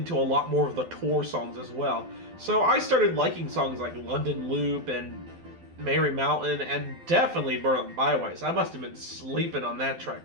to a lot more of the Tour songs as well. So I started liking songs like London Loop and Merry Mountain, and definitely Berlin Byways. I must have been sleeping on that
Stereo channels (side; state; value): left; late; 12 ms